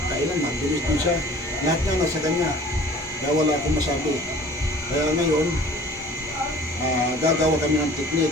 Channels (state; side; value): normal; both; correlation 0.48